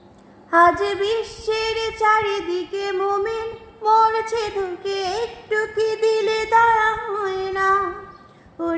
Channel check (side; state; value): both; identical; correlation 1.00